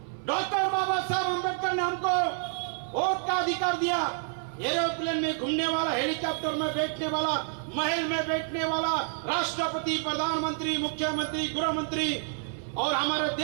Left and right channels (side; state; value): left; silent; 59 dB below the other